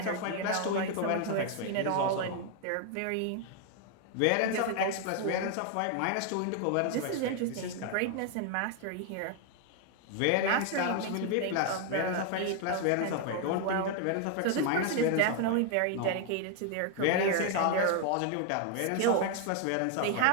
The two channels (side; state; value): both; different; correlation 0.00